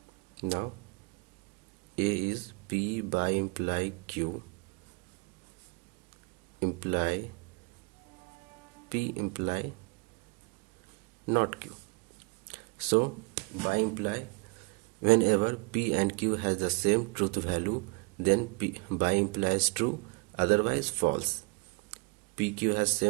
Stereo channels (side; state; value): left; quieter; 29.6 dB